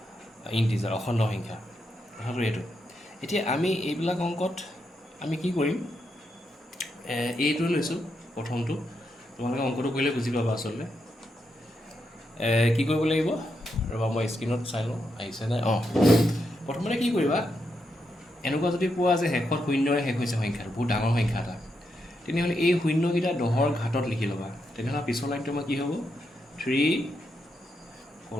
ইণ্টিজাৰ, অখণ্ড সংখ্যা। কথাটো এইটো। এতিয়া আমি এইবিলাক অংকত আমি কি কৰিম, এইটো লৈছোঁ প্ৰথমটো। তোমালোকে অংকটো কৰিলে বুজি পাবা আচলতে। কি কৰিব লাগিব, ৰ'বা মই স্ক্ৰীণত চাই লওঁ আহিছেনে। প্ৰথমতে কি কৰিবা, এনেকুৱা যদি পোৱা যে শেষত শূন্যৰে শেষ হৈছে সংখ্যাটো, বহুত ডাঙৰ সংখ্যা এটা, তেনেহ'লে এই শূন্যকেইটা 10ৰ ঘাতত লিখি ল'বা। তেনেহ'লে পিছৰ লাইনটো আমাৰ কি হ'ব, 3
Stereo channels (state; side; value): normal; both; correlation 0.83